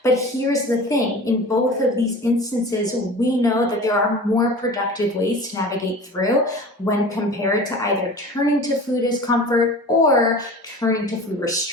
But here's the thing, in both of these instances, we know that there are more productive ways to navigate through when compared to either turning to food as comfort or turning to food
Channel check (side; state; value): both; normal; correlation 0.38